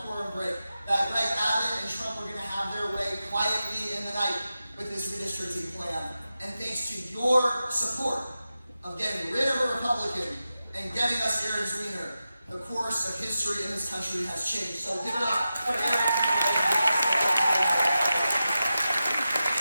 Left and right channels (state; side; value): inverted; both; correlation -0.92